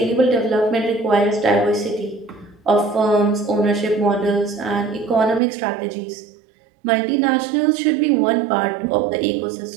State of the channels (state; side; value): drops out; left; at 5.4 s